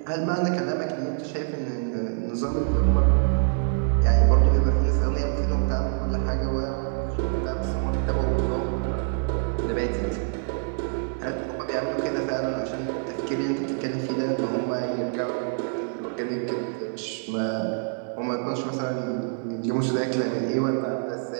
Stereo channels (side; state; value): left; silent; 61 dB below the other